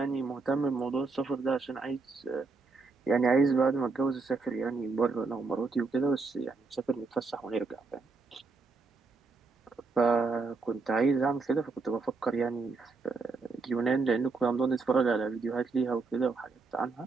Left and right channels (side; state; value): left; quieter; 4.0 dB